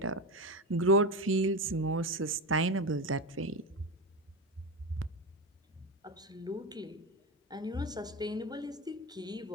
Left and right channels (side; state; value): both; normal; correlation 0.18